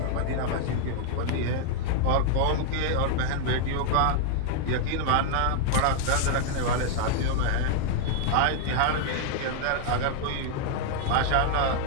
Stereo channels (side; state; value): both; different; correlation 0.00